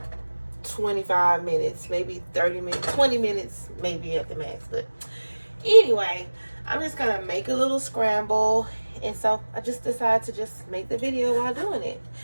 25 minutes, maybe 30 minutes, 20 minutes, maybe at the max. But anyway, I'm just gonna make a little scramble, and so I just decided to just make the video while doing it.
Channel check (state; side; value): inverted; both; correlation -1.00